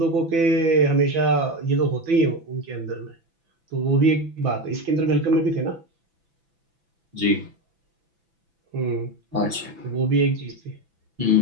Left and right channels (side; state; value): left; late; 6.0 ms